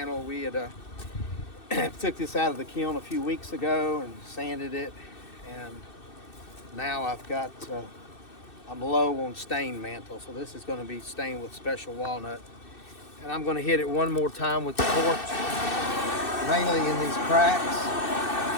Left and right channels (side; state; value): right; late; 2.6 ms